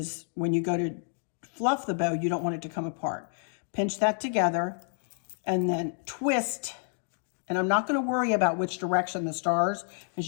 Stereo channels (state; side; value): silent; right; 58 dB below the other